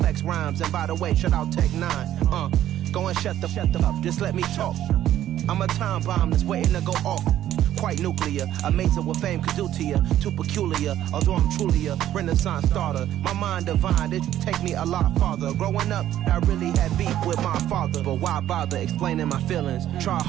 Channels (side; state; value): left; quieter; 12.2 dB